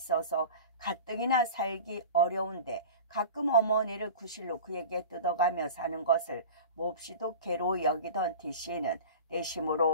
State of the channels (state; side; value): inverted; both; correlation -0.35